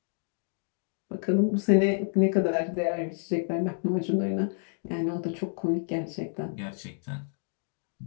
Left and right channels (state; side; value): silent; right; digital silence